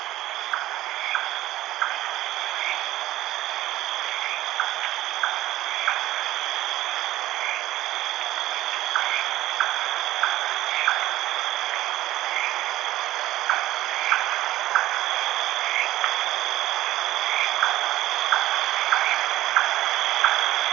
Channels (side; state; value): left; quieter; 15.3 dB